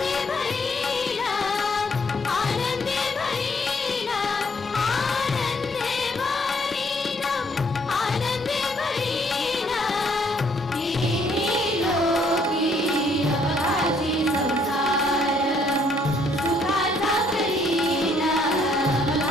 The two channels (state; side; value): normal; both; correlation 0.66